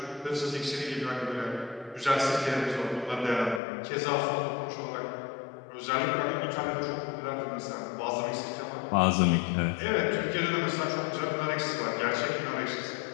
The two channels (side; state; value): right; drops out; at 3.6 s